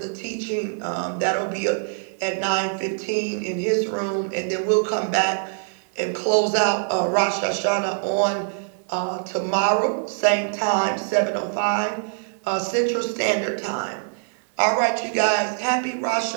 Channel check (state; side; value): silent; left; digital silence